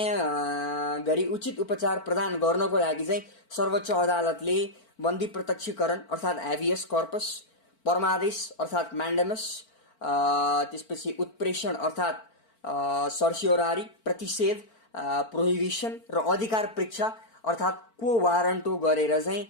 गरी उचित उपचार प्रदान गर्नको लागि चाहिँ सर्वोच्च अदालतले बन्दी प्रत्यक्षीकरण अर्थात् ह्याबियस कर्पस, परमादेश अर्थात् म्यान्डेमस, त्यसपछि उत्प्रेषण अर्थात् सर्सियोरारी, प्रतिषेध प्रोहिबिसन र अधिकार परीक्षा अर्थात् को वारन्टो गरेर चाहिँ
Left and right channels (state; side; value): late; right; 4.4 ms